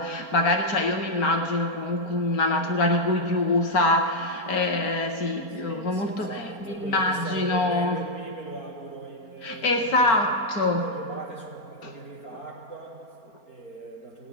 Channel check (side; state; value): right; late; 4.4 ms